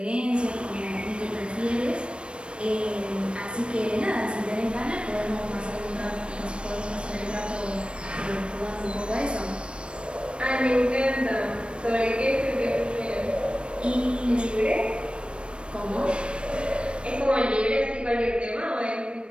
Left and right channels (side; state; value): left; late; 0.057 ms